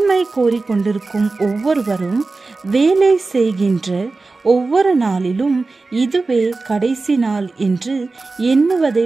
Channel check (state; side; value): quieter; left; 3.7 dB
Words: கோரிக்கொண்டிருக்கும் ஒவ்வொருவரும் வேலை செய்கின்ற ஒவ்வொரு நாளிலும் இதுவே கடைசி நாள் என்று எண்ணுவதை